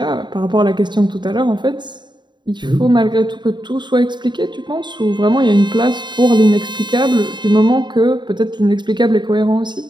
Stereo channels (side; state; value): left; late; 0.22 ms